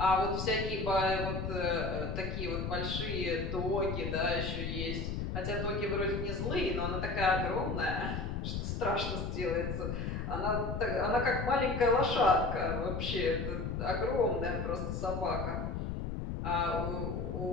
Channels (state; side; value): noise; left; rumble, 3 dB below the sound